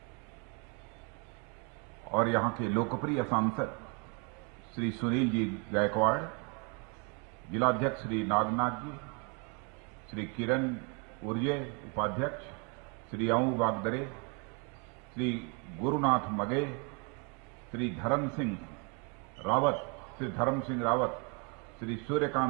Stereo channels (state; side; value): quieter; left; 33.3 dB